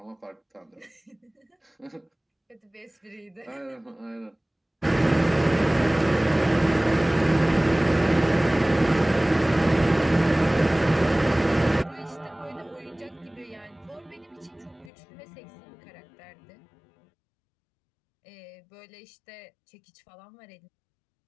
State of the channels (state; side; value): drops out; right; at 14.9 s